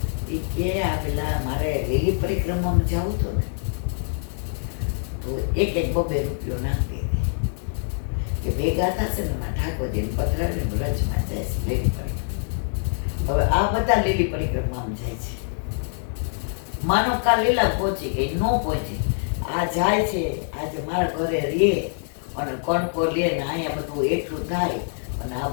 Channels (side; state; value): right; silent; digital silence